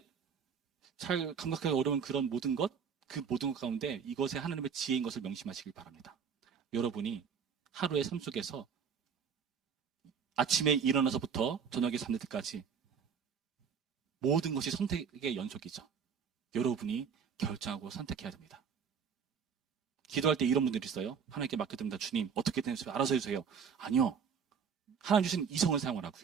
잘 감각하기 어려운 그런 모든 것, 그 모든 것 가운데 이것에 하나님의 지혜인 것을 명심하시길 바랍니다. 여러분이 하루의 삶 속에서 아침에 일어나서부터 저녁에 잠들 때까지 모든 것이 선택의 연속이죠. 여러분이 결정하고 선택해야 됩니다. 기도할 때 이런 분들이 있어요. 하나님께 맡겨드립니다. 주님, 어떻게 되는지 알아서 해주세요. 아니요. 하나님 주신 이성을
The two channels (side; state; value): left; quieter; 6.8 dB